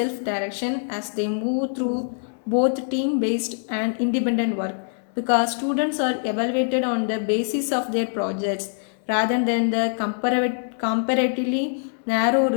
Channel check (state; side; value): silent; right; 63 dB below the other